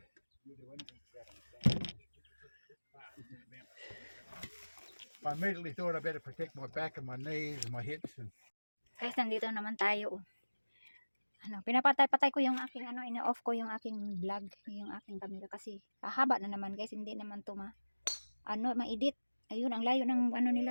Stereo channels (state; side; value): inverted; both; correlation -1.00